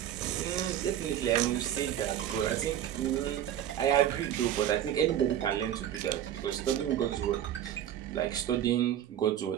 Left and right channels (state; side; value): quieter; left; 11.0 dB